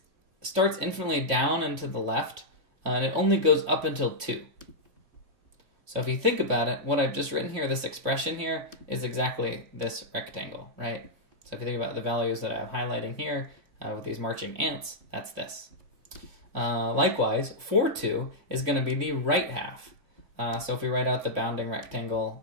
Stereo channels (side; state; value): left; late; 3.6 ms